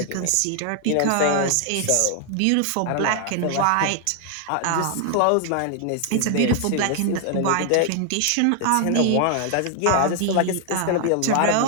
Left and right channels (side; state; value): both; different; correlation 0.00